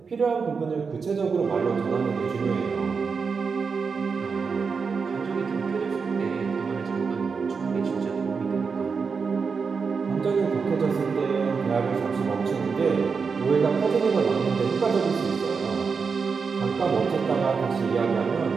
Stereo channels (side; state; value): left; quieter; 5.3 dB